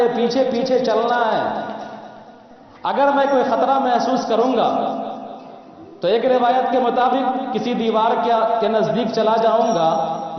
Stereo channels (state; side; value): identical; both; correlation 1.00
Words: پیچھے پیچھے چلنا ہے۔ اگر میں کوئی خطرہ محسوس کروں گا تو ایک روایت کے مطابق کسی دیوار کے نزدیک چلا جاؤں گا،